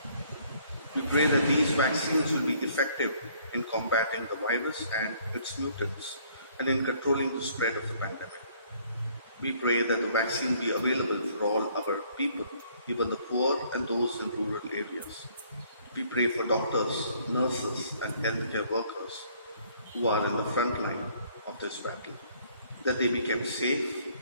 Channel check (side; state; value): both; inverted; correlation -0.62